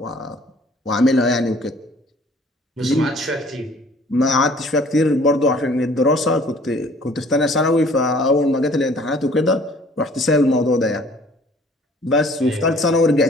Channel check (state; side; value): normal; both; correlation 0.54